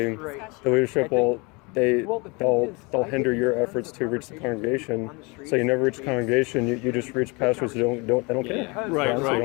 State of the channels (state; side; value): quieter; right; 28.2 dB